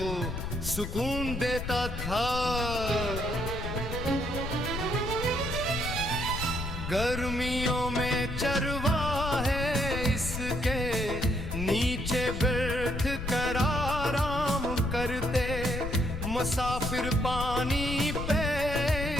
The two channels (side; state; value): left; noise; rumble, 5 dB below the sound